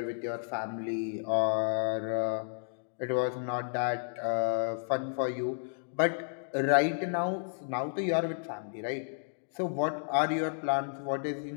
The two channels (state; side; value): silent; right; digital silence